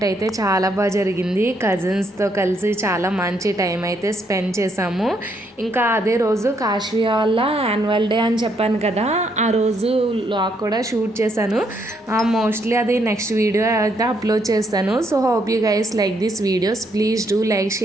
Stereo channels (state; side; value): normal; both; correlation 0.73